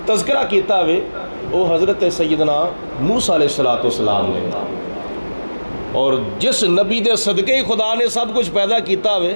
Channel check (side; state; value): both; inverted; correlation -1.00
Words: تذکرہ کیتا ہوئے وہ حضرت سیدنا موسیٰ علیہ السلام نے، اور جس نبی دے صدقے ہی خدا نے سب کچھ پیدا کیتا